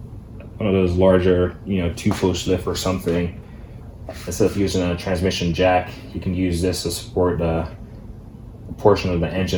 one of those larger, you know, 2-post lift or something, instead of using a transmission jack, you can use this to support a portion of the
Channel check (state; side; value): identical; both; correlation 1.00